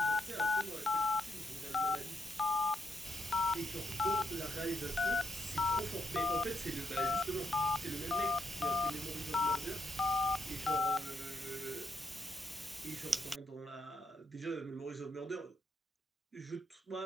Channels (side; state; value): both; normal; correlation 0.79